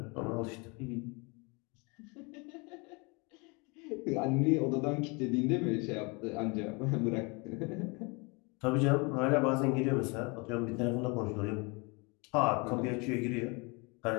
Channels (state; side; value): quieter; right; 29.7 dB